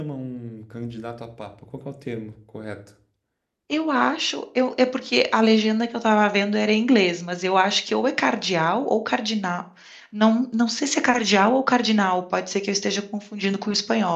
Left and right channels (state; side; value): identical; both; correlation 1.00